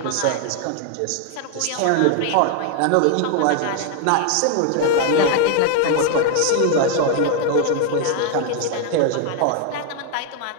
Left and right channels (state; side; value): different; both; correlation 0.01